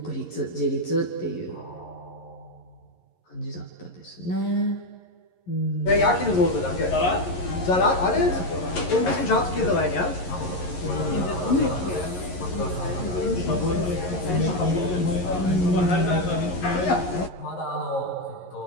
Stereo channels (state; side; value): late; right; 11 ms